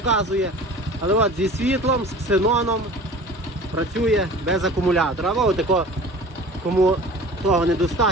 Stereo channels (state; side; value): normal; both; correlation 0.41